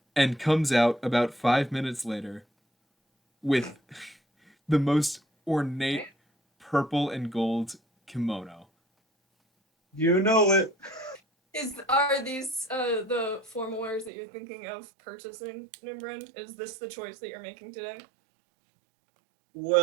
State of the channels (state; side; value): drops out; left; at 14.1 s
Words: and comes out about 5 minutes later with the most ornate purple and gold kimono. You know it. Are these the formal wears that you're thinking of purchasing, Nimbrin? Is this the choice that you're making today?